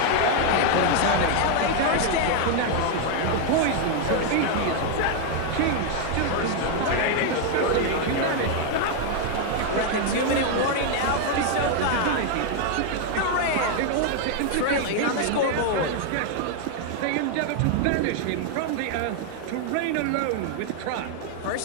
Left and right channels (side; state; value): both; different; correlation 0.00